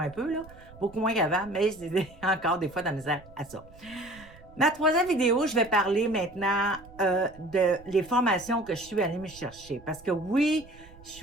un peu, là, beaucoup moins qu'avant, mais j'ai encore des fois de la misère à ça. Ma troisième vidéo, je vais parler maintenant de les formations que je suis allée me chercher. Parce que oui, je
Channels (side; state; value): right; noise; rumble, 21 dB below the sound